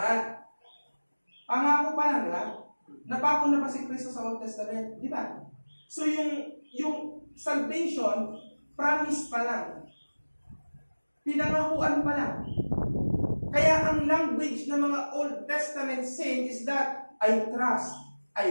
Pangako pa lang, di ba? Napako na ba si Kristo sa Old Testament? Di ba? So yung salvation, promise pa lang. Pinangakuan pa lang. Kaya ang language ng mga Old Testament saints is that I trust,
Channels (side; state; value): both; inverted; correlation -1.00